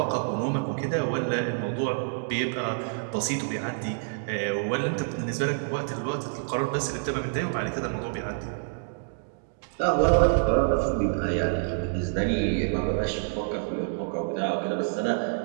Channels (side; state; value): left; silent; digital silence